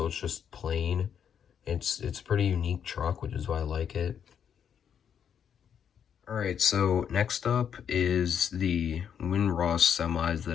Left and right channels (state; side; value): quieter; right; 8.2 dB